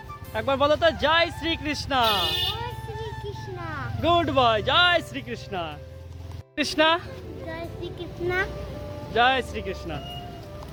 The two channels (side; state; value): both; identical; correlation 1.00